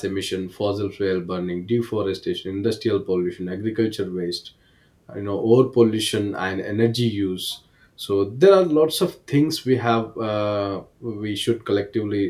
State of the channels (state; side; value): identical; both; correlation 1.00